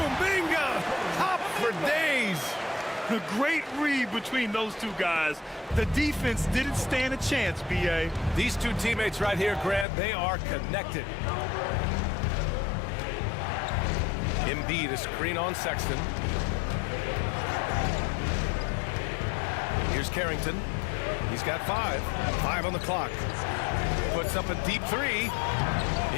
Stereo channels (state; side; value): drops out; right; at 9.9 s